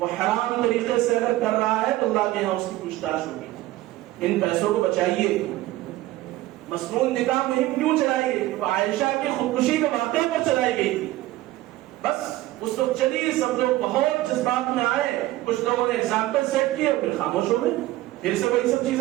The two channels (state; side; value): quieter; left; 16.6 dB